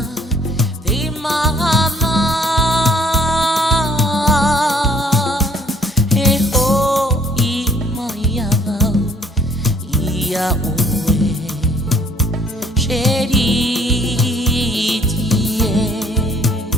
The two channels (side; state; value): both; normal; correlation 0.60